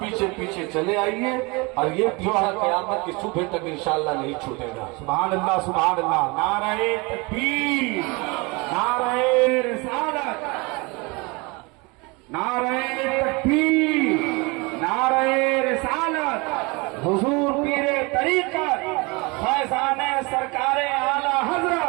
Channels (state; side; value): quieter; left; 27.0 dB